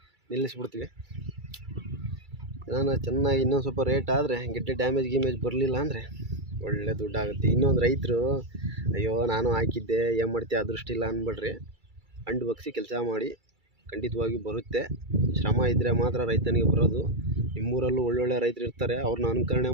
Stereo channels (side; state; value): left; late; 2.3 ms